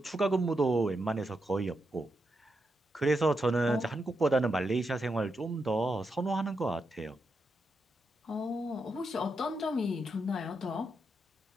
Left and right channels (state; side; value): normal; both; correlation 0.84